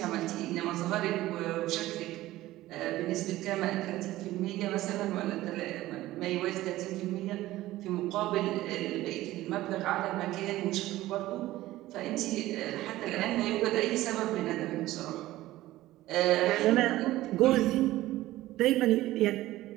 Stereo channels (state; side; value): quieter; left; 16.2 dB